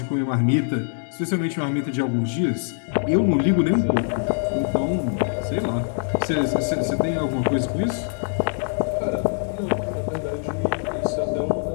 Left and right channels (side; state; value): right; silent; digital silence